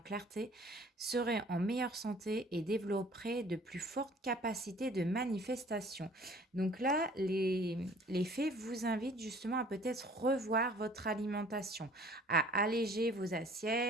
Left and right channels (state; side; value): normal; both; correlation 0.53